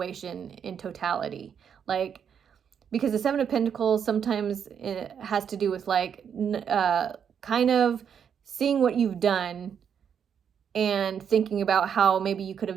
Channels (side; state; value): left; quieter; 7.8 dB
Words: in totality. Like, because the 7 of Pentacles sometimes it has to do with like kind of seeing what you've done and thinking about how maybe you could